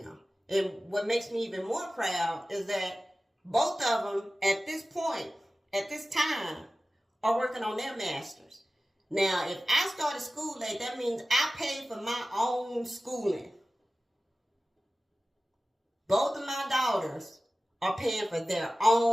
And what makes me even more proud is that both of them at this point, at this time, are working on their masters. Now, if I started school late, that means I paid for my own schooling. Both of my daughters are paying for their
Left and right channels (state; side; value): normal; both; correlation 0.96